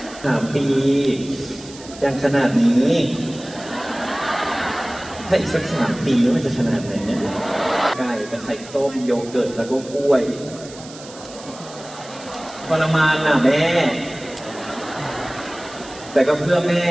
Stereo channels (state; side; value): noise; right; hiss, 17 dB below the sound